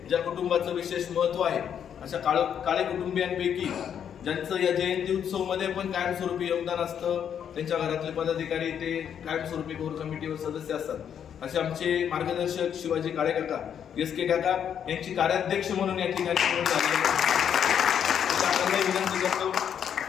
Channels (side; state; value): right; quieter; 8.6 dB